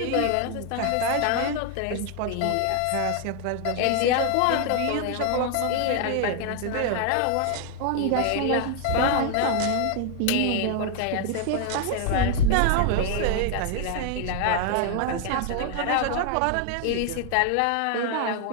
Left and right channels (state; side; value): different; both; correlation 0.00